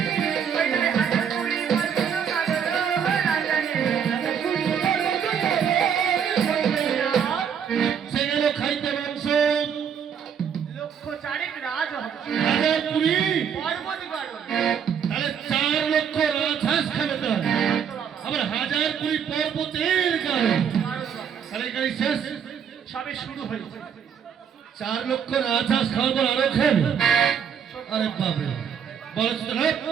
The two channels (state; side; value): quieter; left; 7.7 dB